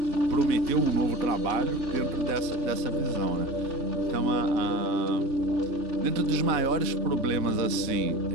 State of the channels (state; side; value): late; left; 4.0 ms